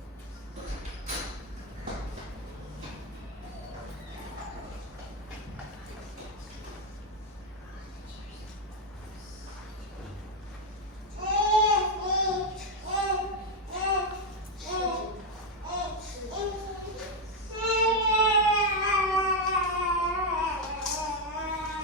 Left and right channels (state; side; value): normal; both; correlation 0.05